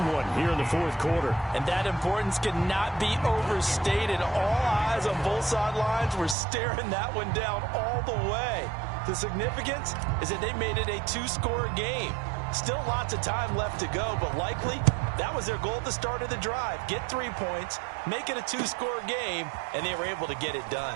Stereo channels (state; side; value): drops out; left; at 6.4 s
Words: one here in the 4th quarter. And that importance cannot be overstated. All eyes on both sidelines were staring that one down all the way. The significance is that they made it a 2-score game. Still lots of time left to go, but likely that was their goal at the start of the drive. Get 3 points, make it a 2-score game, and they were able to get it